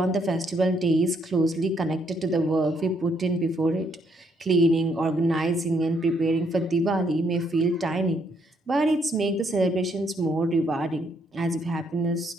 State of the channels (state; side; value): normal; both; correlation 0.72